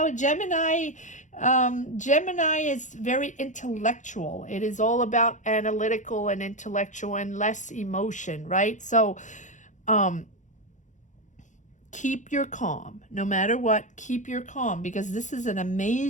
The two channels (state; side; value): late; right; 0.36 ms